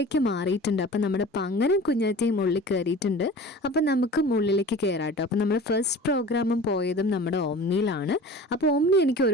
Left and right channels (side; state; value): both; normal; correlation 0.40